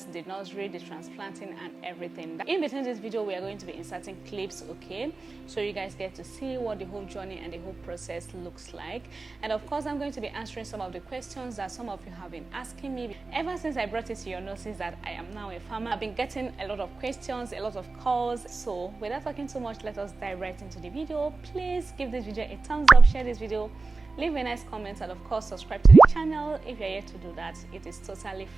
the nursery, the transplanting and everything. In between this video, we are going to be inserting clips, so you guys get to see what the whole journey and the whole process looks like. And of course, I'm going to be answering some of the questions that some of you have been asking me. Ever since I brought it to your notice that I am now a farmer, I've been getting a lot of questions, a lot of calls. So without talking too much, let us dive right into the video. Please give this video a thumbs up, share this video, leave a nice comment, and of course subscribe to the channel. If you're yet to do that, it is totally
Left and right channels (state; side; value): quieter; left; 3.7 dB